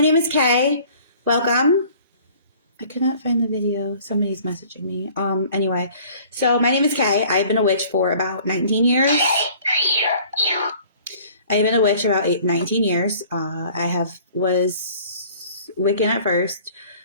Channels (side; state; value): both; inverted; correlation -0.52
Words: name is Kay. Welcome. I could not find the video. Somebody's messaging me. Anyway, so my name is Kay. I've been a witch for about 19 years. I've been a witch about 19 years. I was Wiccan at first.